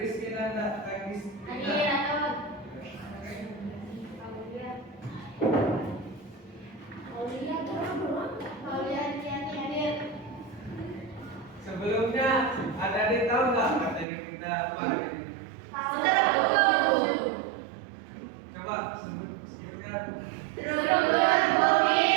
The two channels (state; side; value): drops out; left; at 14.1 s